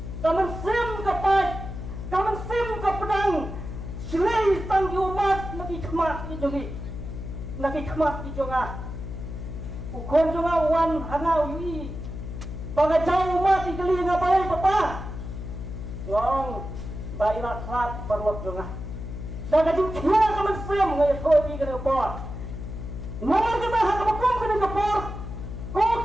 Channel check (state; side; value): noise; left; hum, 8 dB below the sound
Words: Kamu swim ke pai, kamu swim ke pedang. Silai tang umat lagi kemat di jongi, lagi kemat di jonga. Ukon jonga wan hangau yui, bagai jauh umat di keli ngapai papa. Wong baiklah klat perlok jonga. Dan kajing kia kaman sem ngaya kodi kena kepor. Nomor kita hak kebekum kena kepor. Kau